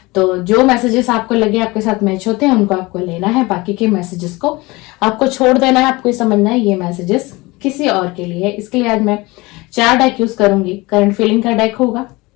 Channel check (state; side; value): quieter; right; 22.6 dB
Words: तो जो मैसेजेस आपको लगे आपके साथ मैच होते हैं उनको आपको लेना है, बाकी के मैसेजेस को आपको छोड़ देना है। आपको समझना है ये मैसेजेस किसी और के लिए है। इसके लिए आज मैं 4 डेक यूज करूंगी। करंट फीलिंग का डेक होगा,